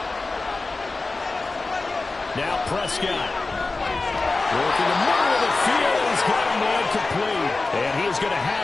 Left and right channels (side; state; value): right; quieter; 3.5 dB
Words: Now Prescott. Working the middle of the field. He's got a man complete. And he's going to